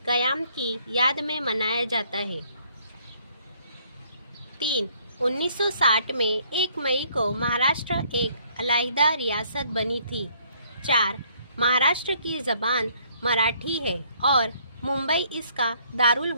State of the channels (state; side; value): inverted; both; correlation -0.64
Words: क़याम की याद में मनाया जाता है। 3. 1960 में 1 मई को महाराष्ट्र एक अलहदा रियासत बनी थी। 4. महाराष्ट्र की ज़बान मराठी है और मुंबई इसका दारुल